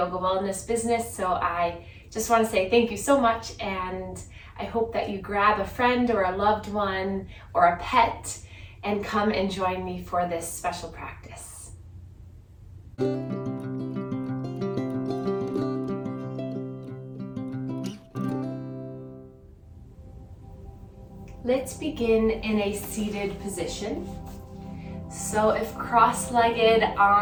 wellness business. So I just want to say thank you so much, and I hope that you grab a friend or a loved one or a pet and come and join me for this special practice. Let's begin in a seated position. So if cross-legged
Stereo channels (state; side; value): identical; both; correlation 1.00